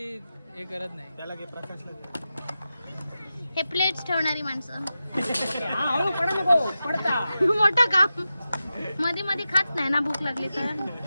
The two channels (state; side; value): inverted; both; correlation -0.92